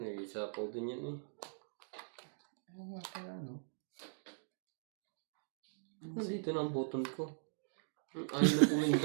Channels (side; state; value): left; silent; digital silence